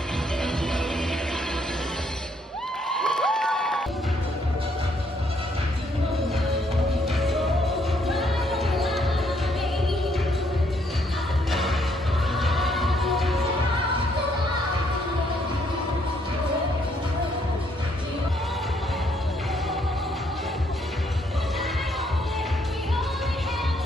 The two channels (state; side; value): normal; both; correlation 0.70